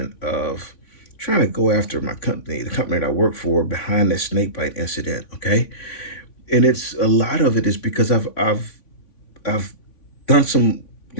of trying to go after my company, the company that I work for, behind this snakebite incident. Okay, and it's a lot of it is because I've done some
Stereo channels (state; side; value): late; right; 3.5 ms